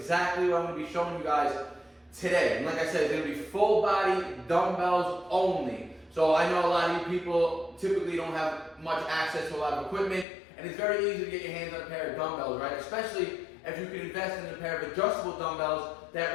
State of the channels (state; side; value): drops out; right; at 10.2 s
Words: what I'm going to be showing you guys today. And like I said, it's going to be full body dumbbells only. So I know a lot of you people typically don't have much access to a lot of equipment, and it's very easy to get your hands on a pair of dumbbells, right? Especially if you can invest in a pair of adjustable dumbbells that